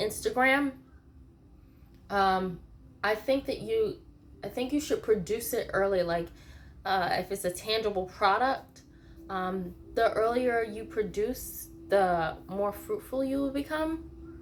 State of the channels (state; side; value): identical; both; correlation 1.00